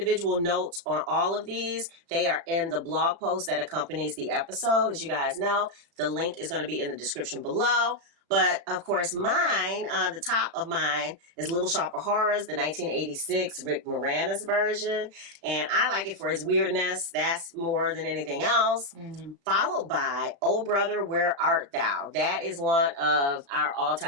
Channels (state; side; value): late; left; 36 ms